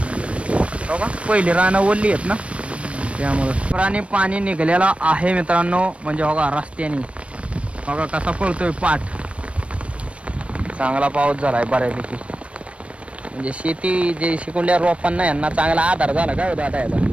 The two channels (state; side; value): late; left; 0.062 ms